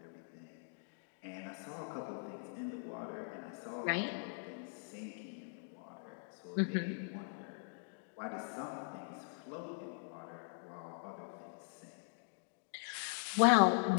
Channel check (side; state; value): right; silent; digital silence